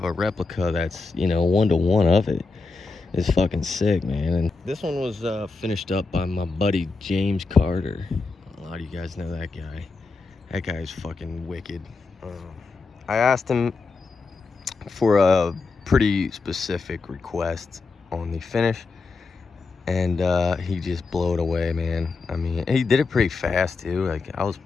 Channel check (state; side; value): quieter; right; 4.1 dB